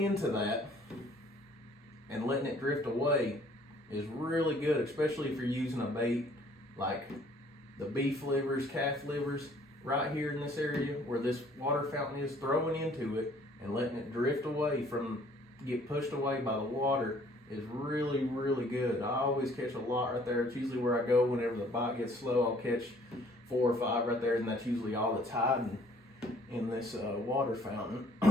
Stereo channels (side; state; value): both; normal; correlation 0.58